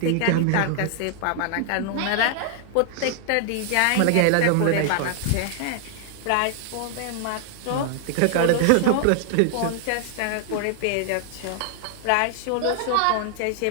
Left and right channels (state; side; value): different; both; correlation 0.00